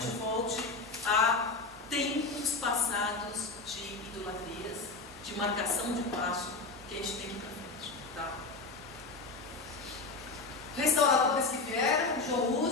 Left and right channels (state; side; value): quieter; right; 3.8 dB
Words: volte a tempos passados de idolatrias, de marcação de passo que a gente tem que ir para frente. Tá? Restauradores que vieram, João